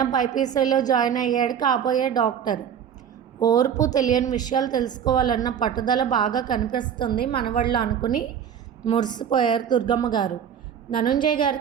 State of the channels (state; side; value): quieter; left; 8.5 dB